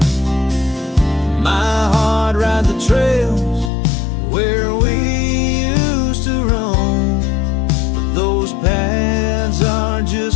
My heart rides the trails where we used to roam, but those paths are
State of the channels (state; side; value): drops out; right; at 3.7 s